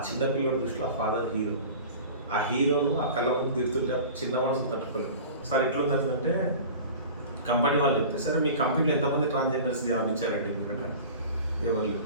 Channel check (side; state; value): both; inverted; correlation -0.38